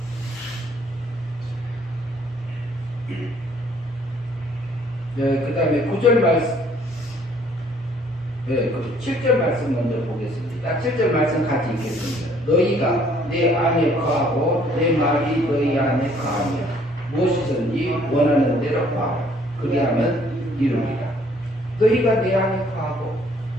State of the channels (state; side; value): normal; both; correlation 0.61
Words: 네, 그 다음에 9절 말씀, 네, 7절 말씀 먼저 보겠습니다. 7절 말씀 같이 읽겠습니다. 너희가 내 안에 거하고 내 말이 너희 안에 거하며 무엇이든지 원하는 대로 구하라. 그리하면 이루리라. 너희가 내 안에 거하고